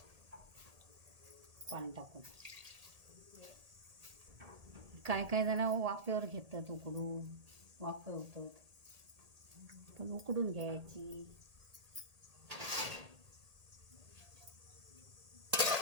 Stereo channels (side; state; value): left; late; 1.8 ms